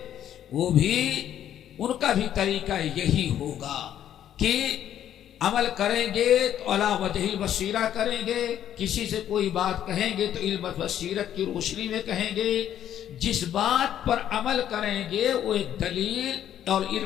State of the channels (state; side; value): quieter; right; 10.7 dB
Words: وہ بھی ان کا بھی طریقہ یہی ہوگا کہ عمل کریں گے تو علی وجہ البصیرہ کریں گے. کسی سے کوئی بات کہیں گے تو علم بصیرت کی روشنی میں کہیں گے. جس بات پر عمل کریں گے وہ ایک دلیل اور